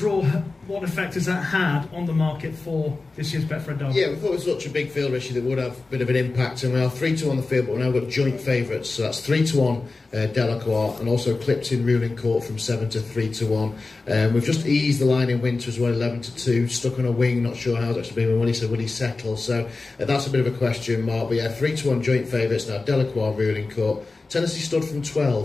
what effect has that had on the market for this year's Betfred Derby? Yeah, we thought it was such a big field, Richie, that would have a bit of an impact. And we are 3-1 the field, but we've now got joint favourites. So that's 3-1 Delacroix, and also clipped in Ruling Court from 7 to 3-1. We've just eased the line in Winter as well, 11 to 2. Stuck on a wing, not sure how it's actually been. When he said, will he settle? So that's a bit of a question mark. But yeah, 3-1 joint favourites now. Delacroix, Ruling Court. Tennessee stood from 12,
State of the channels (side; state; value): right; quieter; 3.6 dB